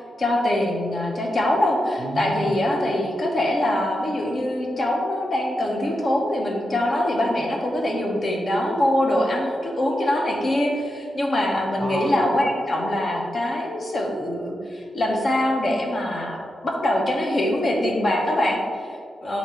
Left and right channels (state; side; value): normal; both; correlation 0.87